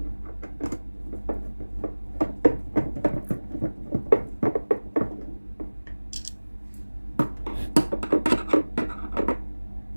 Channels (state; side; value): inverted; both; correlation -1.00